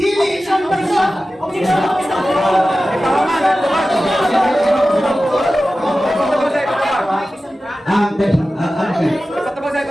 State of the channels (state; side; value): normal; both; correlation 0.95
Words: isang person. Ang